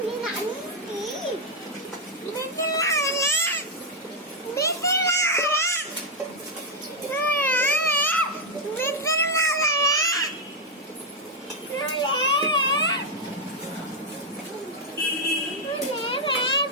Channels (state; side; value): normal; both; correlation 0.01